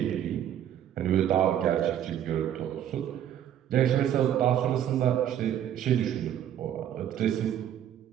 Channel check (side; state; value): left; quieter; 10.4 dB